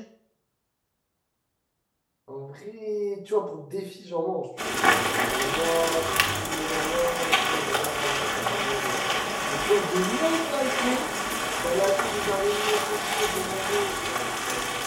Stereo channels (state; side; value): identical; both; correlation 1.00